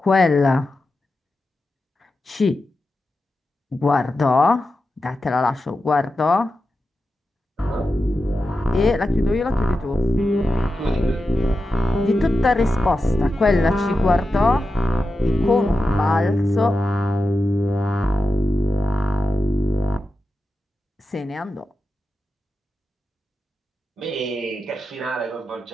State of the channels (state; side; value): normal; both; correlation 0.91